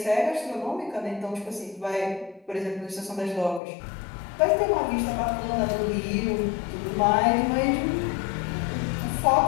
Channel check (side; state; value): right; drops out; at 3.6 s